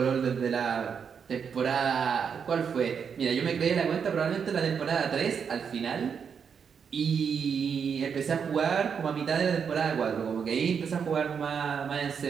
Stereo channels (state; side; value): quieter; left; 6.8 dB